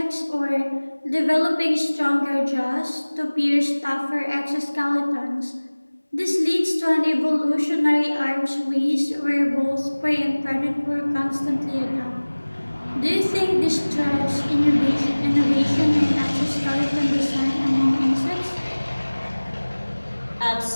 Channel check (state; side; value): inverted; both; correlation -1.00